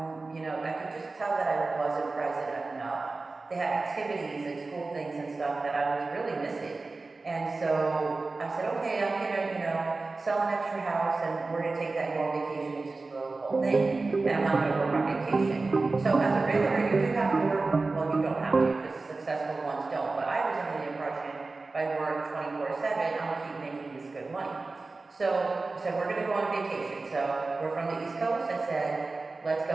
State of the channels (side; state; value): left; quieter; 3.6 dB